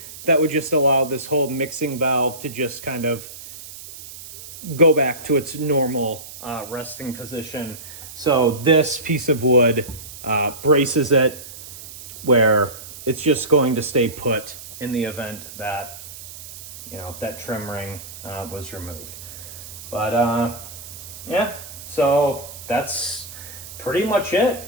that would just allow this whole mixing valve to just kind of go back to its normal resting position. So this piece of wood braces it where it's just going to stay put in the event that, that trim ring was removed. But yeah, so that's pretty much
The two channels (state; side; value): noise; right; hiss, 14 dB below the sound